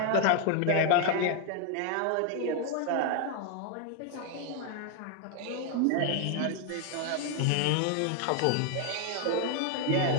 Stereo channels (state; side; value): different; both; correlation 0.01